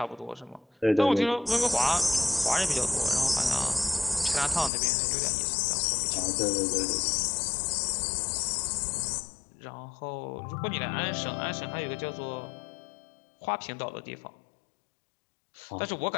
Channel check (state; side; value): drops out; right; at 4.7 s